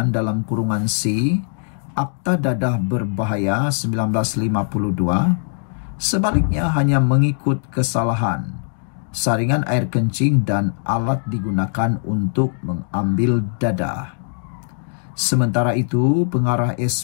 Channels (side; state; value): right; silent; digital silence